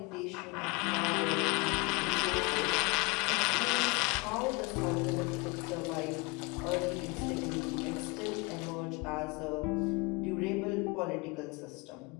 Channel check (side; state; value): right; quieter; 27.8 dB